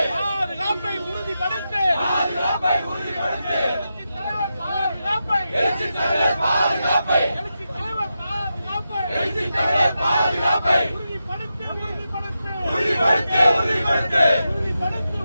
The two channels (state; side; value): inverted; both; correlation -0.89